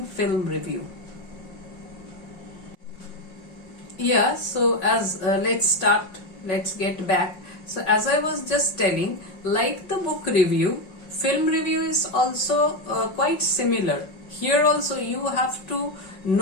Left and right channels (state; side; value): late; right; 5.5 ms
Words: film review. Yeah, so let's get back. So as I was just telling, like the book review, film review is also quite similar. Here also you have to